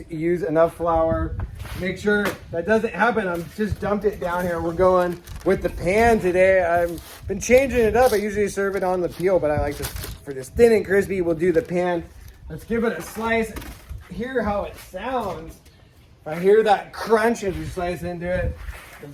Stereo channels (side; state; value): both; identical; correlation 1.00